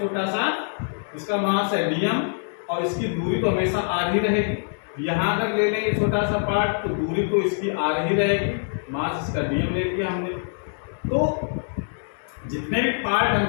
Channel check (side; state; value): right; silent; 62 dB below the other